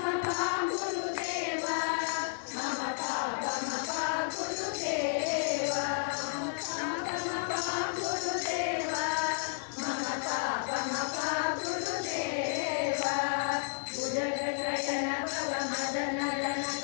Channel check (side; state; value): right; silent; digital silence